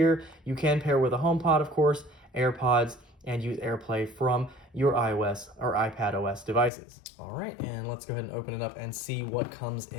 You can pair with a HomePod, of course, AirPods, and use AirPlay from your iOS or iPadOS devices. All right, and let's go ahead and open it up and see what comes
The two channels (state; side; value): drops out; right; at 6.7 s